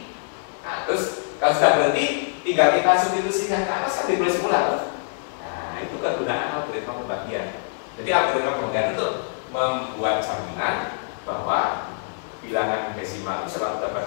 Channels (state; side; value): silent; right; 62 dB below the other